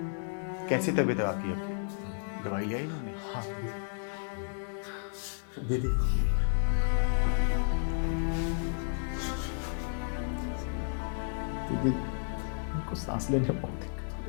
कैसी तबीयत है आपकी? अब दवाई लिया इन्होंने? हाँ दीदी, दीदी उनको सांस लेने में बहुत दिक्कत हो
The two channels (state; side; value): silent; right; digital silence